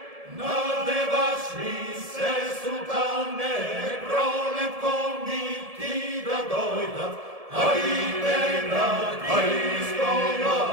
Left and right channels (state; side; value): late; left; 1.7 ms